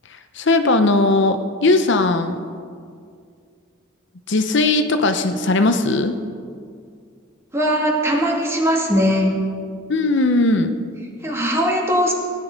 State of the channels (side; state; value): both; normal; correlation 0.32